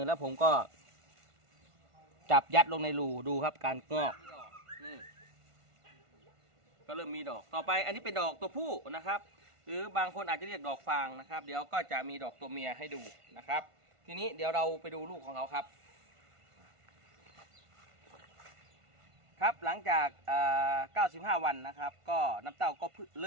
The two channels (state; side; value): late; left; 1.5 ms